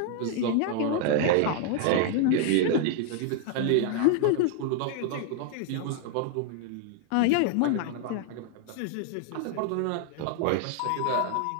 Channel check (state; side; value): different; both; correlation 0.00